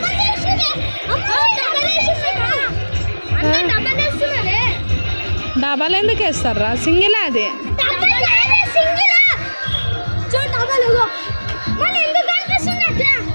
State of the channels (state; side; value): inverted; both; correlation -1.00